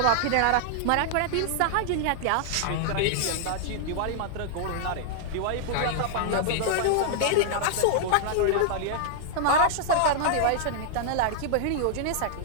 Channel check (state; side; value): different; both; correlation -0.01